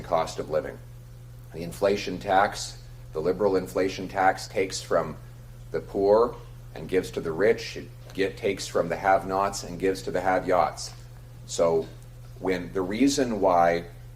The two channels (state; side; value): identical; both; correlation 1.00